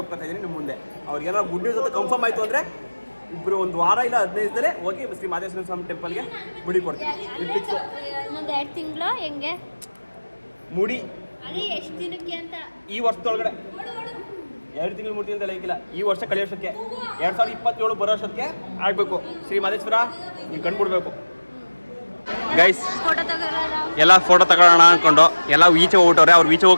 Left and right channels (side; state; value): both; inverted; correlation -1.00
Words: ಒಪ್ಕೊತಾ ಇದ್ದೀನಿ ನಿಮ್ಮ ಮುಂದೆ. ಅವ್ರಿಗೇನಾದ್ರು ಗುಡ್ ನ್ಯೂಸ್ ಅಂತ ಕನ್ಫರ್ಮ್ ಆಯಿತು ಅಂದರೆ ಇಬ್ಬರು 1 ವಾರ ಇಲ್ಲ 15 ದಿನ ಹೋಗಿ ಶ್ರೀ ಮಹಾದೇಶ್ವರ ಸ್ವಾಮಿ ಟೆಂಪಲ್ಗೆ ಮುಡಿ ಕೊಡ್ತೀನಿ. ಇನ್ನೊಂದು 2 ತಿಂಗಳು ಹೆಂಗೆ ಮುಡಿ ಅದೇ ಎಷ್ಟು ದಿನಕ್ಕೆ ಅಂತ ಈ ವರ್ಷದೊಳಗಡೆ 2 ತಿಂಗಳು 3 ತಿಂಗಳು ಲೆಕ್ಕಿಲ್ಲ. ಈ ವರ್ಷ ಕಳೆಯೋಷ್ಟಕ್ಕೆ 2027 ಬರೋ ವರ್ಷಕ್ಕೆ ಆಗಬೇಕು. ಶ್ರೀ ಮಹದೇಶ್ವರ ನೀವು ಕಂಡುಬಿಡ್ಬೇಕು ಗೈಸ್. ಫೋಟೋ ತಗೋರ ಎಲ್ಲ ಫೋಟೋ ತಗೊಳ್ಳೋಣ ಅಂದ್ಕೊಂಡು ಎಲ್ಲ ಈಚೆ ಹೋಗ್ಬಿಟ್ಟವ್ರೆ. ಅವ್ರು ಈಚೆ